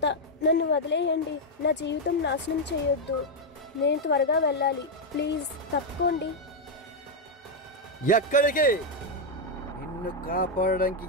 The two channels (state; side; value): normal; both; correlation 0.01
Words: నన్ను వదిలేయండి. నా జీవితం నాశనం చేయొద్దు. నేను త్వరగా వెళ్ళాలి, ప్లీజ్ తప్పుకోండి. ఎక్కడికి? నిన్ను కాపాడడానికి